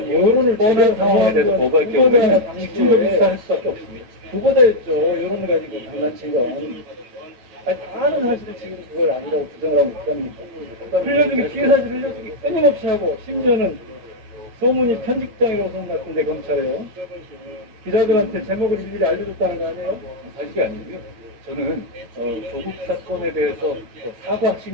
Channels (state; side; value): late; left; 9.3 ms